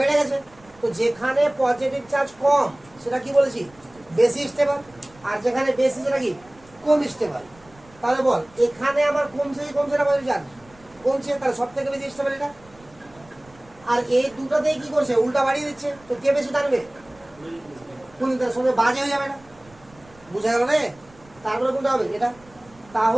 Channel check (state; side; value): noise; right; rumble, 27 dB below the sound